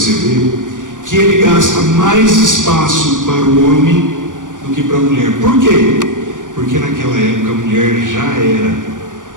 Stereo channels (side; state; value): left; late; 0.87 ms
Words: ver que ele gasta mais espaço para o homem do que para a mulher. Por quê? Porque naquela época a mulher já era